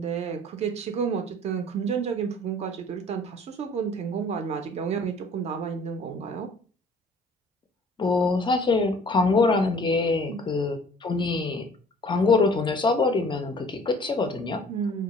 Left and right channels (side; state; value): both; normal; correlation 0.52